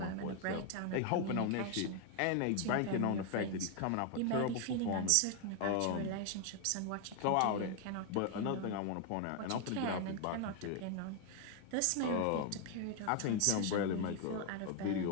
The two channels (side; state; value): both; different; correlation 0.01